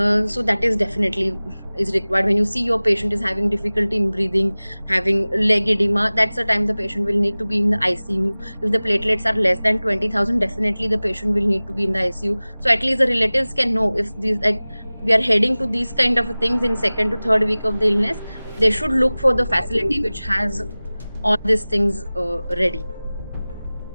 So that is definitely is required. When you see your patient is having difficulty in breathing, having leg edema, that's the time the patient will need to be in the ICU. If the platelets are less than 20,000, definitely the patient will need to be in the ICU. So at least the relatives can know if these, like, we are heading to these kind of things in second to third week of the illness, they should look for the facility which has all these things ready.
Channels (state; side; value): inverted; both; correlation -0.99